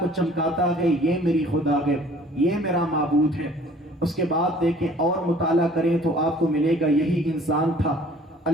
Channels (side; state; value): both; normal; correlation 0.53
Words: چمکاتا ہے، یہ میری خدا ہے، یہ میرا معبود ہے۔ اس کے بعد دیکھیں اور مطالعہ کریں تو آپ کو ملے گا یہی انسان تھا،